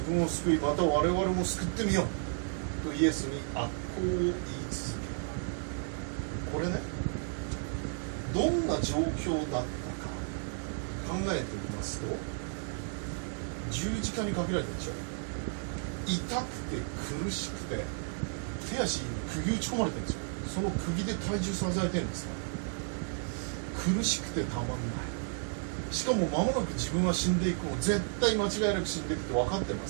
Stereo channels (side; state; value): left; silent; 56 dB below the other